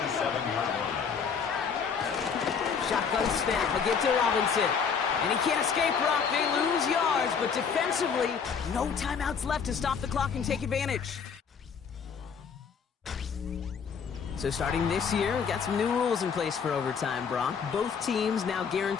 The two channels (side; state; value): right; quieter; 6.4 dB